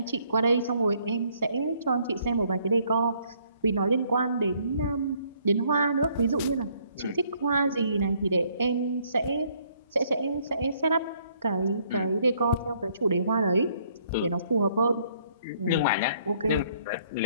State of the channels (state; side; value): inverted; both; correlation -0.66